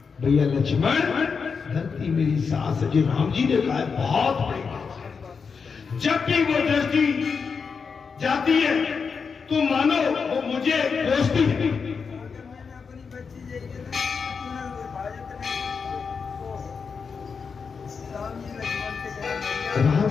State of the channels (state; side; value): quieter; right; 5.6 dB